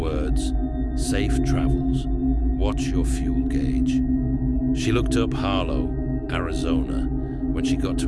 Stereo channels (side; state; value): both; identical; correlation 1.00